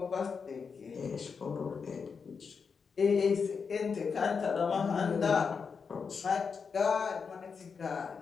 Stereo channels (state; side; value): quieter; right; 5.7 dB